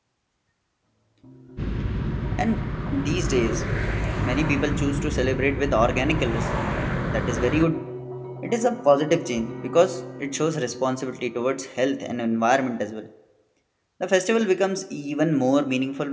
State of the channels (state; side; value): identical; both; correlation 1.00